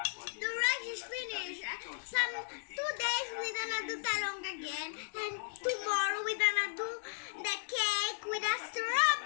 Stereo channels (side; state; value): right; silent; digital silence